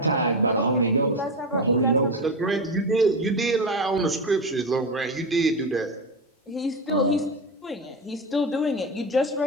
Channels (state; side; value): normal; both; correlation 0.17